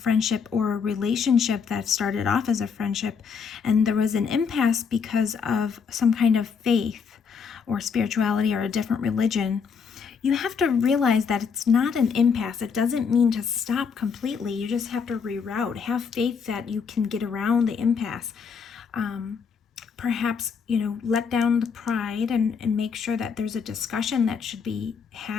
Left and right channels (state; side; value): quieter; right; 6.1 dB